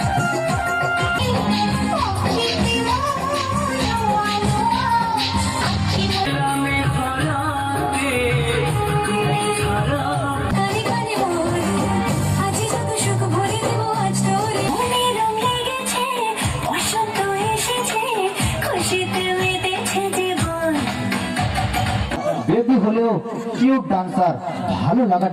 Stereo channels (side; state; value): both; identical; correlation 1.00